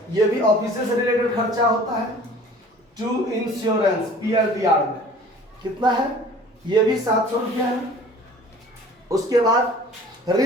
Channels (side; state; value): both; normal; correlation 0.47